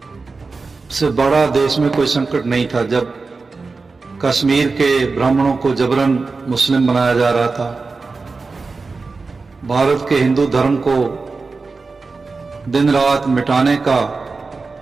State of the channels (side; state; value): left; quieter; 4.1 dB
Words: से बड़ा देश में कोई संकट नहीं था। जब कश्मीर के ब्राह्मणों को जबरन मुस्लिम बनाया जा रहा था, भारत के हिंदू धर्म को दिन रात मिटाने का